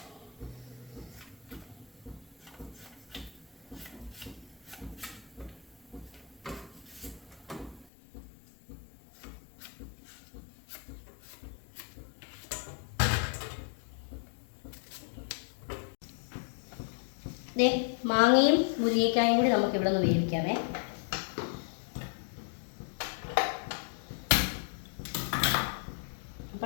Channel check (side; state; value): right; drops out; at 7.9 s